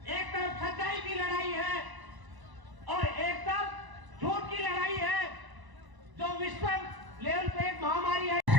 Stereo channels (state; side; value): late; left; 1.0 ms